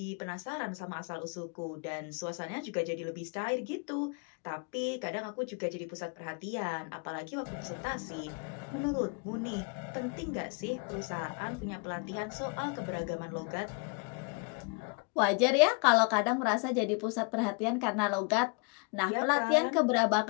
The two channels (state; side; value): quieter; right; 34.0 dB